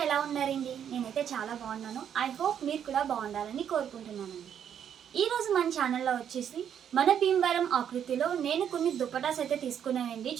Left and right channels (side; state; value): left; quieter; 8.9 dB